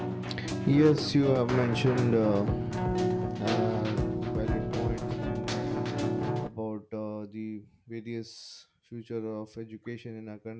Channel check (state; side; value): identical; both; correlation 1.00